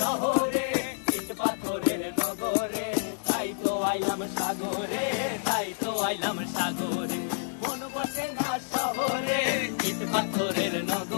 ইট পাথরের নগরে, তাই তো আইলাম সাগরে, তাই তো আইলাম সাগরে। মন বসে না শহরে, ইট পাথরের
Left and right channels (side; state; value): right; silent; digital silence